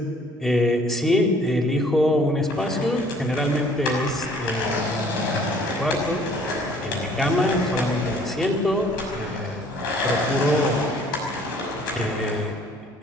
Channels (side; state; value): both; normal; correlation 0.57